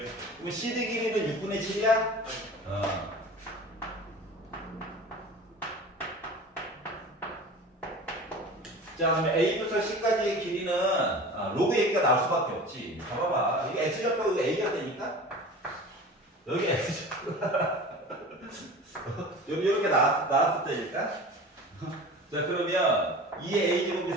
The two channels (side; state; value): both; normal; correlation 0.37